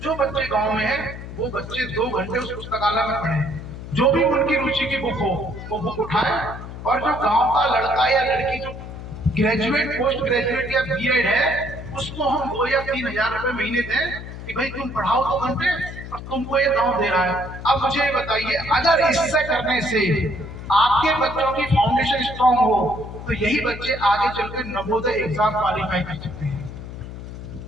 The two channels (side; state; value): left; noise; hum, 11 dB below the sound